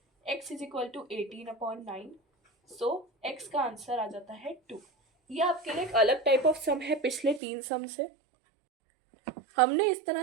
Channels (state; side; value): drops out; left; at 7.4 s